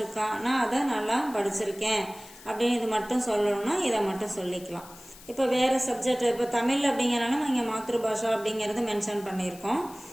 நான் அதை நல்லா படிச்சிருக்கேன் அப்படின்னு இது மட்டும் சொல்லணும்னா இதை மட்டும் சொல்லிக்கலாம். இப்போ வேற சப்ஜெக்ட், இப்போ தமிழ் அப்படிங்கிறனால நம்ம இங்கே மாத்ரு பாஷா அப்படிங்கிறது மென்ஷன் பண்ணியிருக்கோம்.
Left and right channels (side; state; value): left; noise; hiss, 20 dB below the sound